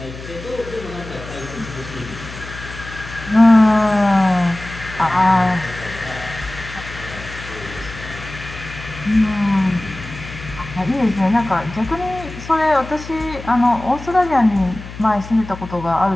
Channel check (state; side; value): noise; left; hum, 13 dB below the sound